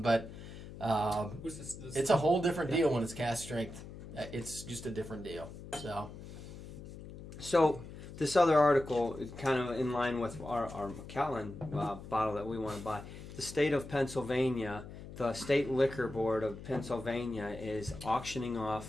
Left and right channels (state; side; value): noise; left; hum, 13 dB below the sound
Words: but it's a whole different deal when it's cask strength. It's just a different deal. So this other article is kind of in line with our Macallan bottle that we want to buy. The state of Pennsylvania, the State Liquor Board of Pennsylvania is auctioning